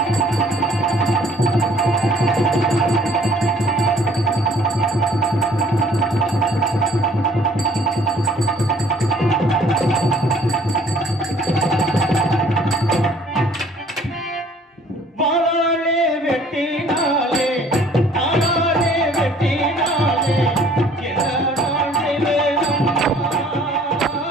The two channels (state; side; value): normal; both; correlation 0.57